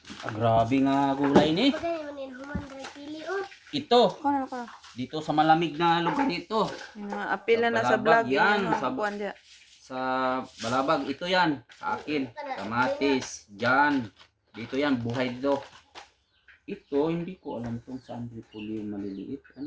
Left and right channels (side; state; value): both; identical; correlation 1.00